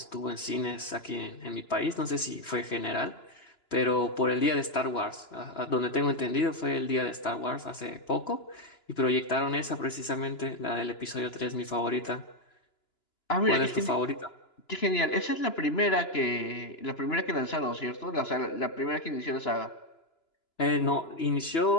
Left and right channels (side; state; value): right; late; 2.9 ms